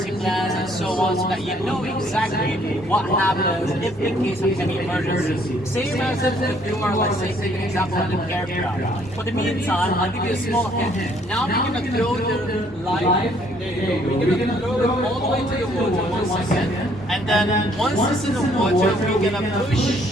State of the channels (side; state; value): both; normal; correlation 0.64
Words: plans and so on, so that you know exactly what happens if in case of any emergency. Same as if you are, let's say, take an example of an aircraft. For the meantime, I'll give you a small hint. Now we're going to throw the life. There you go. We're going to throw it all the way to the water 1 second. And then once it's in the water, we're going to